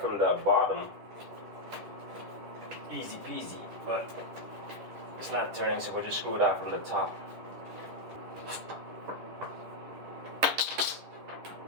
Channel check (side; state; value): left; late; 10 ms